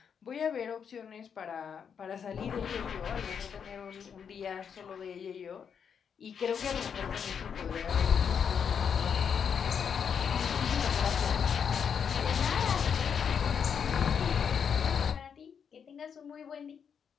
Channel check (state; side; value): quieter; right; 7.2 dB